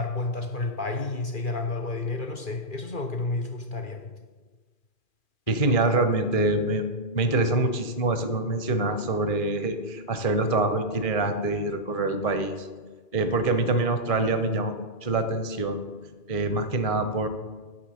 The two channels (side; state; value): right; late; 2.4 ms